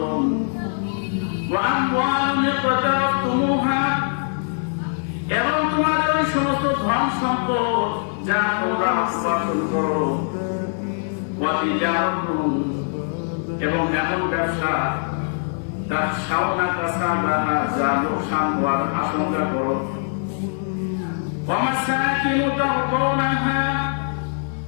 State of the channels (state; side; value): silent; right; 64 dB below the other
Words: وأموال اقترفتموها এবং তোমাদের ওই সমস্ত ধন সম্পদ যা তোমরা উপার্জন করো এবং এমন ব্যবসা তার সামনা কাছা যা লোকসান হওয়ার আশঙ্কা করো